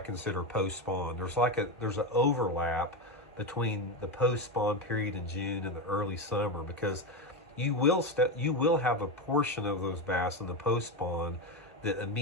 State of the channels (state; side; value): normal; both; correlation 0.14